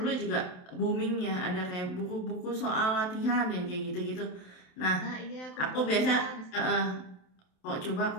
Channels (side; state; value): right; late; 27 ms